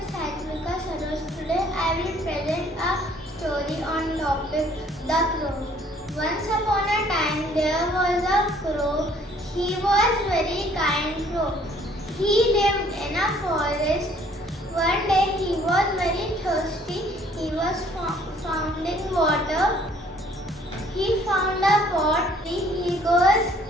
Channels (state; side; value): normal; both; correlation 0.59